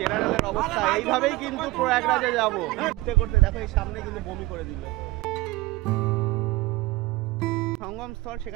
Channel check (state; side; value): quieter; left; 19.8 dB